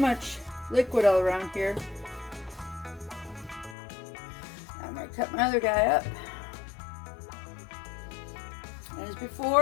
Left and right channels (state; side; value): drops out; right; at 3.8 s